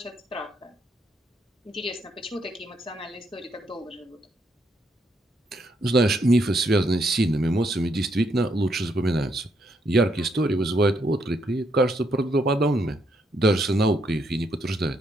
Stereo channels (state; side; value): normal; both; correlation 0.75